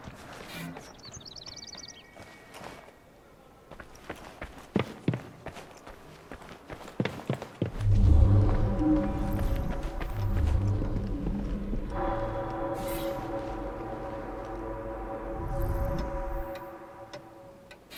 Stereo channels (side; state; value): both; identical; correlation 1.00